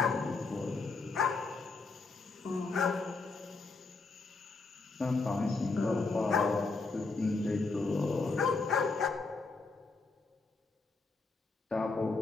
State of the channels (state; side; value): quieter; right; 3.9 dB